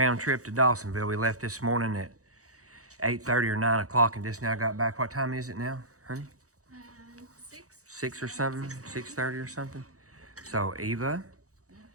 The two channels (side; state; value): left; late; 0.65 ms